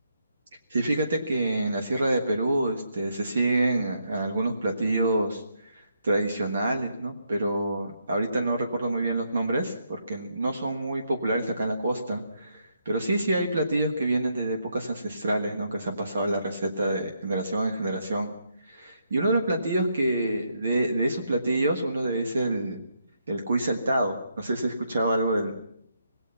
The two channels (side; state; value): both; inverted; correlation -0.77